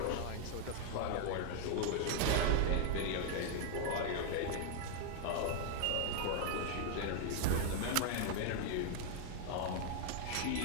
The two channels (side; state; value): both; different; correlation 0.00